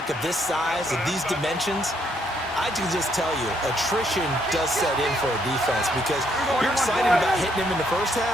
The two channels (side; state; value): both; normal; correlation 0.72